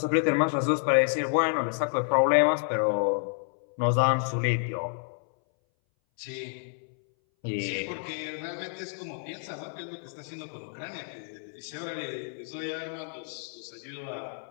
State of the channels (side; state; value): right; silent; 58 dB below the other